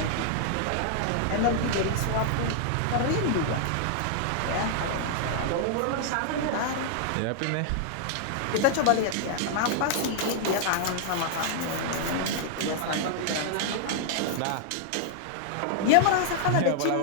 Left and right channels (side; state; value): both; different; correlation -0.01